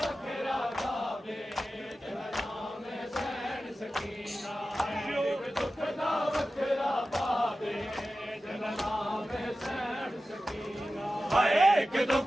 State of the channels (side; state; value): both; normal; correlation 0.94